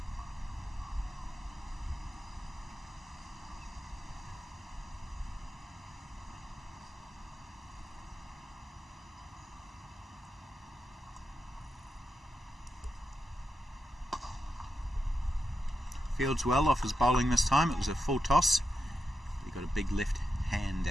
Fields well off his bowling this time. It was a full toss. He got a big left hand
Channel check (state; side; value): normal; both; correlation 0.87